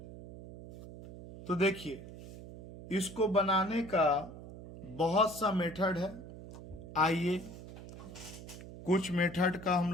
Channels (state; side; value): noise; right; hum, 14 dB below the sound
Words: तो देखिए इसको बनाने का बहुत सा मेथड है। आइए कुछ मेथड का हम